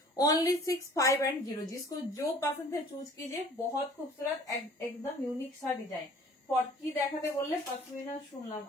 ओनली 6510, जिसको जो पसंद है चूज कीजिए। बहुत खूबसूरत एकदम यूनिक सा डिजाइन। কি দেখাতে বললে? পশমিনা শুনলাম,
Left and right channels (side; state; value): both; normal; correlation 0.51